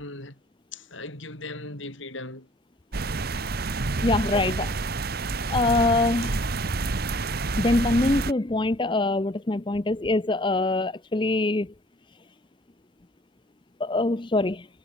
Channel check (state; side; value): normal; both; correlation 0.55